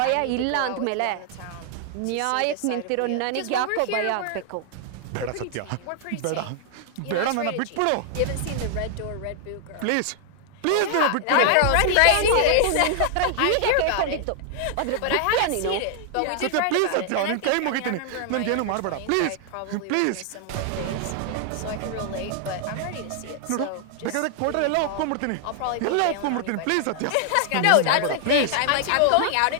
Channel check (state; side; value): different; both; correlation 0.00